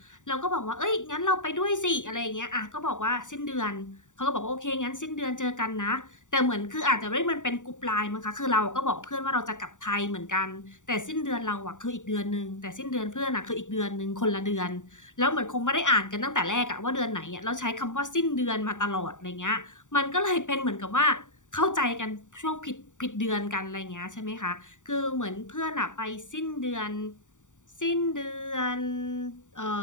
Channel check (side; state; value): right; late; 0.86 ms